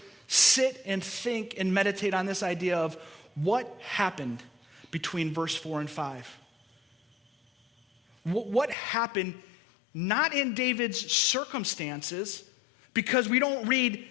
sit and think and meditate on this idea of what happened between verse 4 and 5. What happened not in David's circumstances, because we don't read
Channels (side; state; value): right; drops out; at 8.8 s